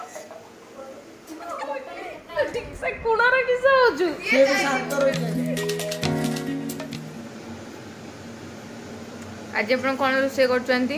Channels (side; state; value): both; identical; correlation 1.00